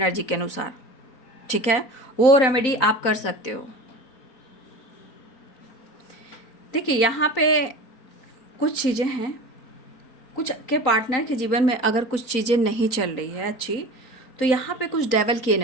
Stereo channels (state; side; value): late; right; 4.4 ms